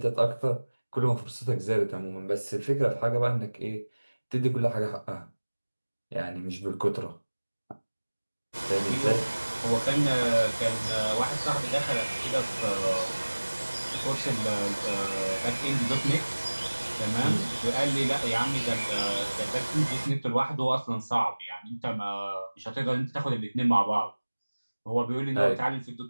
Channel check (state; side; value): inverted; both; correlation -1.00